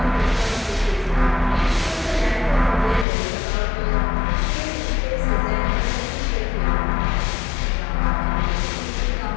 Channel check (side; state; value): right; drops out; at 3.1 s